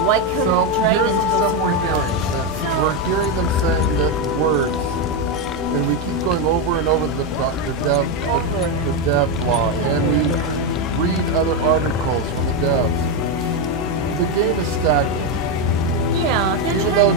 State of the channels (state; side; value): normal; both; correlation 0.06